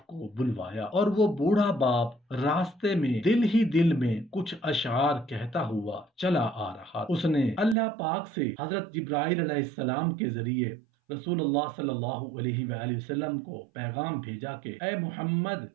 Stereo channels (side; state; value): left; drops out; at 7.8 s